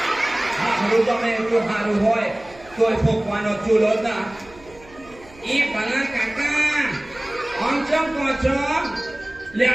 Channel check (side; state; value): right; noise; hum, 24 dB below the sound